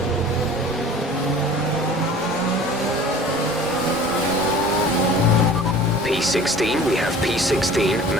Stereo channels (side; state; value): both; normal; correlation 0.44